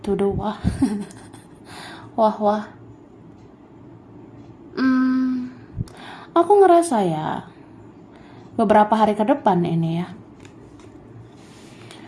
tuduh wah. Wah. Aku ngerasa ya, beberapa hari ke depan ini ya.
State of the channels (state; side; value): identical; both; correlation 1.00